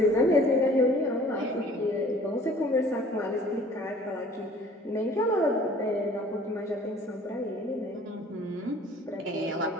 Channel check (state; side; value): normal; both; correlation 0.51